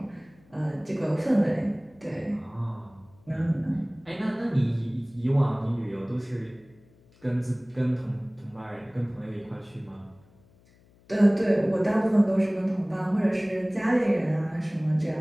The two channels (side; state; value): left; noise; hum, 29 dB below the sound